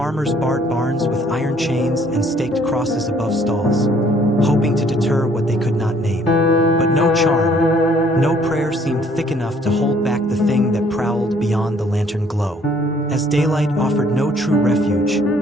barred barns with iron chains and staked crosses above stalls, hoping to deter what they could not name. But no charm, no prayer seemed thick enough to hold back the thing that prowled daylight offered no true refuge,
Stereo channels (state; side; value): normal; both; correlation 0.61